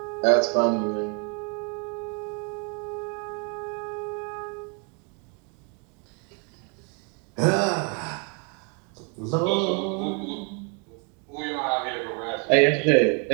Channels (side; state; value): left; quieter; 36.6 dB